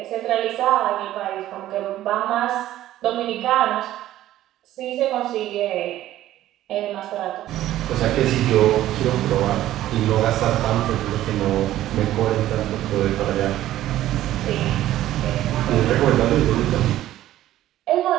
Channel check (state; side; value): quieter; left; 13.8 dB